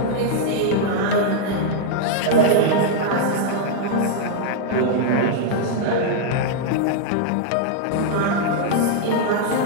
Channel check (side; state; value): both; different; correlation -0.01